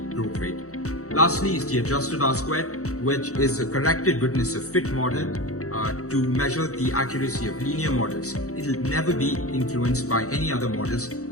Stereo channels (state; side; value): late; right; 0.65 ms